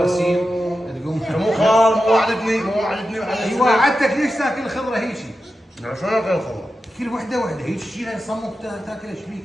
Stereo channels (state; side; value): normal; both; correlation 0.91